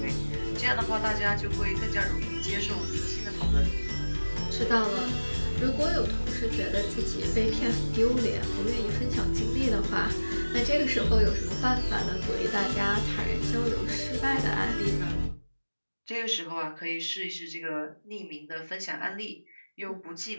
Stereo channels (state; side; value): inverted; both; correlation -1.00